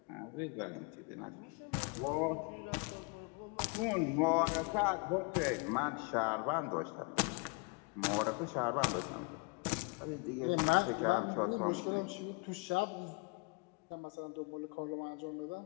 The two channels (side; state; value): right; quieter; 30.9 dB